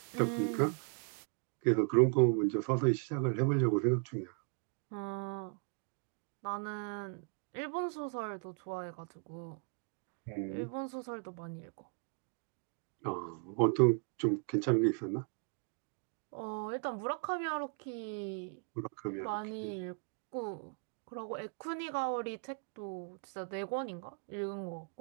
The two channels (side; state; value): left; quieter; 39.6 dB